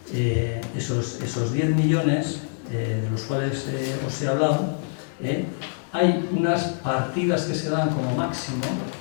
esos 10 millones de los cuales os he hablado, hay unas partidas que se dan como máximo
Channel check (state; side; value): silent; right; digital silence